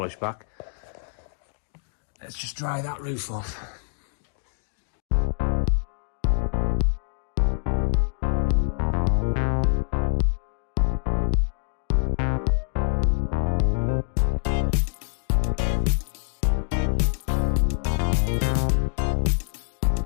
back. Let's just dry that roof off.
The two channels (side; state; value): right; silent; 62 dB below the other